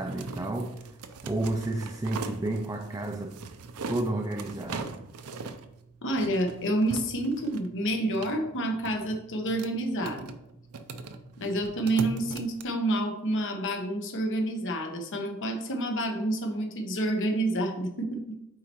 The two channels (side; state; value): both; normal; correlation 0.62